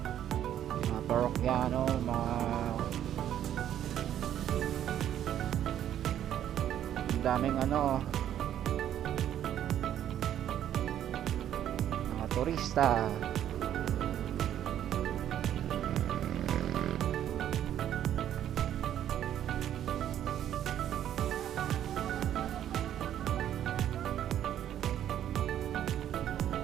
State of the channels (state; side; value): quieter; left; 10.8 dB